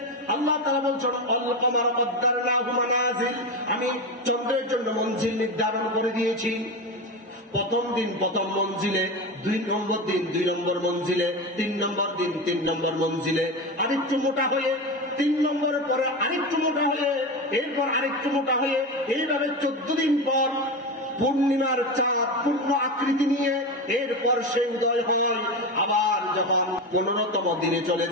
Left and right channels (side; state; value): both; normal; correlation 0.20